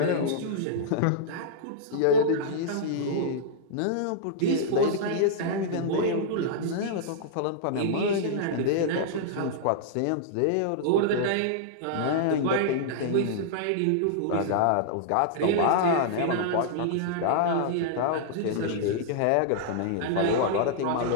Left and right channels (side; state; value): both; different; correlation -0.02